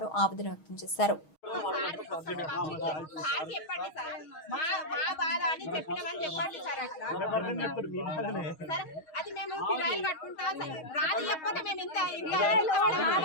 ఆవేదన వ్యక్తం చేశారు.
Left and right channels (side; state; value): right; late; 6.3 ms